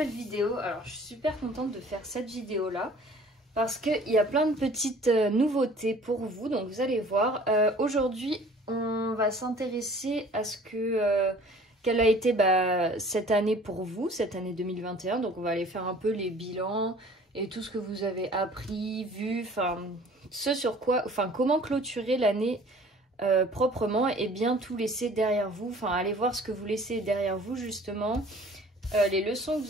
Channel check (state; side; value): normal; both; correlation 0.50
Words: vidéo. Alors je suis super contente de faire cette vidéo là parce qu'il y a plein de petites nouveautés pour vous, donc vous allez voir. Aujourd'hui on va s'intéresser à ce que quelle a été cette année pour vous, cette année 2021. Donc on va aller faire un peu les bilans et tout ce que vous avez appris, vu, enfin ce sur quoi, enfin comment clôturer l'année proprement et bien tout laisser derrière vous. Enfin, allez voir ce que vous laissez derrière vous justement, les leçons que